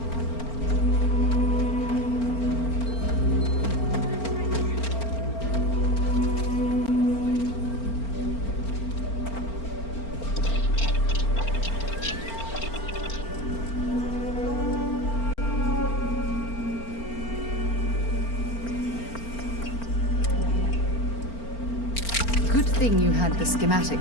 Good thing you had the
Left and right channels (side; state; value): right; late; 4.4 ms